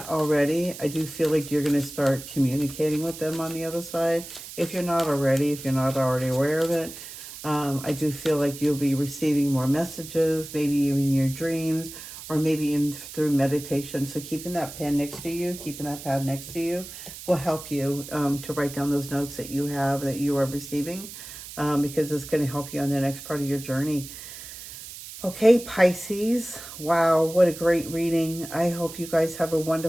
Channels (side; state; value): right; noise; hiss, 13 dB below the sound